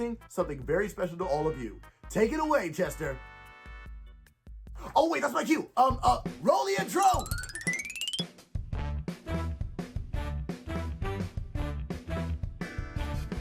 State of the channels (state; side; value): identical; both; correlation 1.00